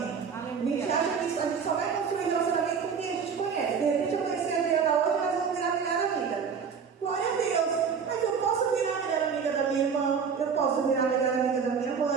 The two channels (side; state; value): left; quieter; 6.3 dB